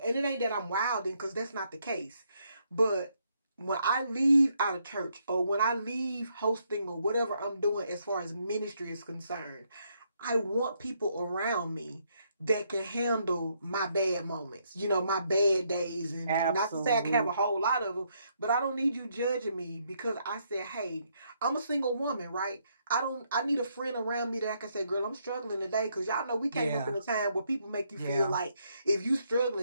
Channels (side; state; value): both; inverted; correlation -0.74